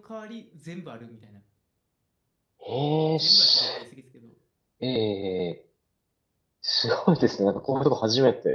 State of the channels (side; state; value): both; identical; correlation 1.00